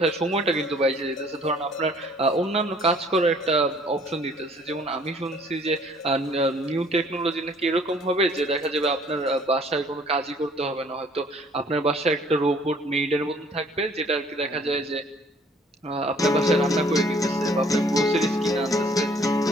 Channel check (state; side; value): normal; both; correlation 0.58